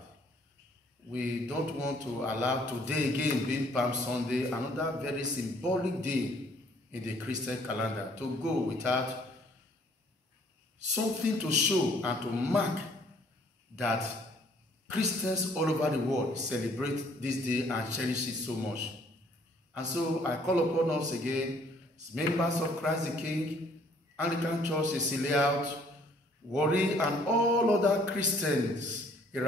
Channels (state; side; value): normal; both; correlation 0.61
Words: We don't want to allow today again, being Palm Sunday, another very symbolic day in the Christian calendar, to go without something to show and to mark that Christians all over the world celebrate this day and cherish it so much. And so I call upon us again, as members of Christ the King, Anglican Church, Cecilia Out, Warri, and all other Christians